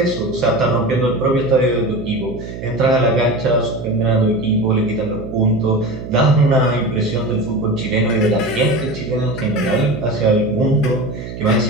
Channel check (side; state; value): right; noise; hum, 10 dB below the sound